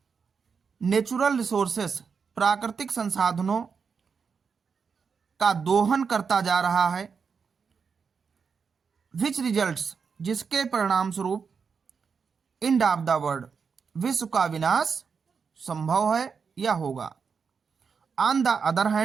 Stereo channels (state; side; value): quieter; left; 5.8 dB